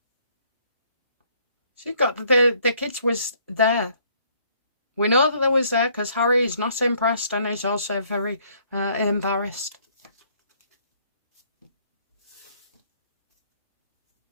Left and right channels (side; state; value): both; inverted; correlation -0.64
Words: She got the kids was there. We know that they was there because Harry is not impressed and is also very embarrassed.